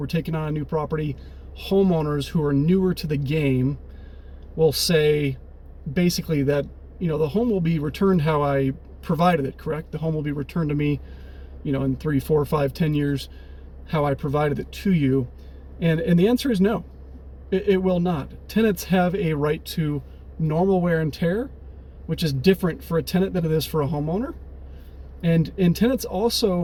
taking on a new property, homeowners who are newer to the game will say basically that, the home will be returned how I provided it, correct? The home will be returned to me, in 3, 4, 5, 10 years, how I provided it to you. And the answer is no, it will not. Tenants have a right to normal wear and tear, which is different for a tenant than it is for a homeowner. And tenants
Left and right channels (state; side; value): identical; both; correlation 1.00